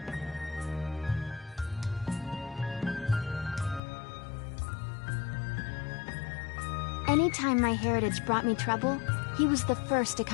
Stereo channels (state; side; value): drops out; right; at 3.8 s